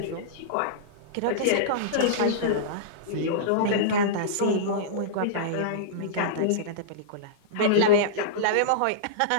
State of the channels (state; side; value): different; both; correlation -0.03